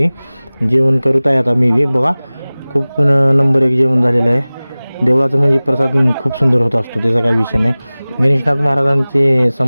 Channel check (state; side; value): inverted; both; correlation -0.99